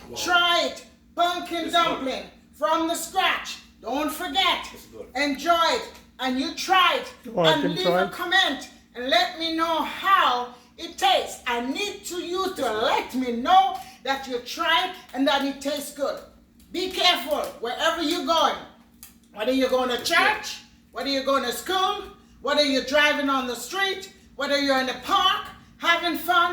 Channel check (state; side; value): identical; both; correlation 1.00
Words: Try it. Pumpkin dumpling from the scratch. Don't forget. Enjoy it. And you try it. And leave a comment and let me know how it tastes. I need you to let me know that you tried and that it tastes good. Be careful wherever you're going. Whether you're going to church, whether you're going to school, whether you're driving on the street, whether you're in the park, having